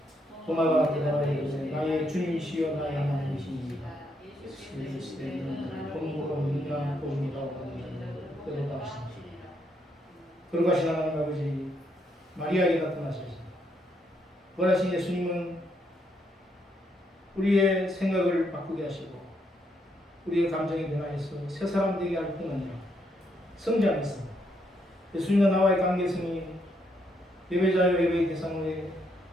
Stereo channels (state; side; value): normal; both; correlation 0.76